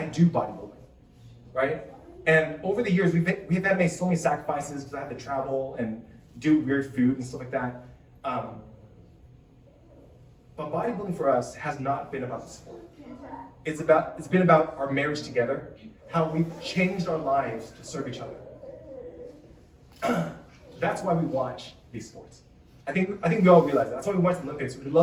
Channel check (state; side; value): identical; both; correlation 1.00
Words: do bodybuilding, right? And over the years, we've had to make so many sacrifices because I have to travel and do weird food and stuff like that. But bodybuilding for us has not been about the sport. It's been about our marriage together, how we've changed our lives to serve each other. That's why we watch these sports. I think we all realize that. That's why we watch the Olympics. We